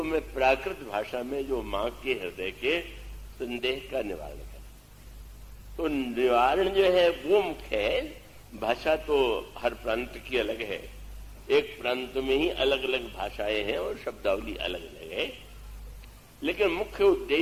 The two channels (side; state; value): both; identical; correlation 1.00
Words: मैं प्राकृत भाषा में जो मां के हृदय के संदेह का निवारण करें। तो निवारण जो है वो मुख्य है। भाषा तो हर प्रांत की अलग है, एक प्रांत में ही अलग अलग भाषाएं हैं और शब्दावली अलग अलग है, लेकिन मुख्य